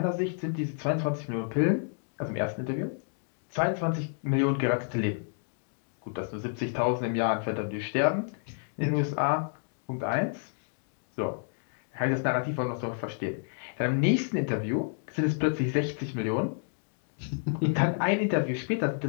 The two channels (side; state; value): right; silent; digital silence